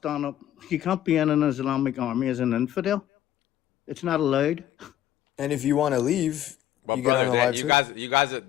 up," you can't be in an Islamic army as an infidel. It's not allowed. And if you want to leave, But you get brother, unalived too. you guys,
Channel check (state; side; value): quieter; right; 12.2 dB